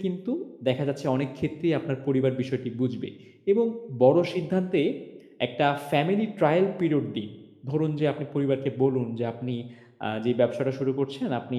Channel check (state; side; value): identical; both; correlation 1.00